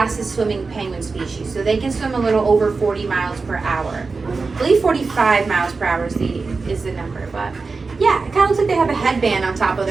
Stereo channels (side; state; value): left; quieter; 4.3 dB